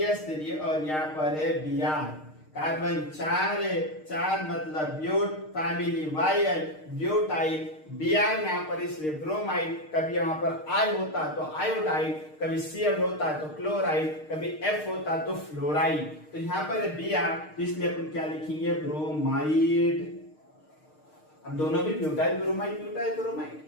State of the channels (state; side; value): late; right; 6.5 ms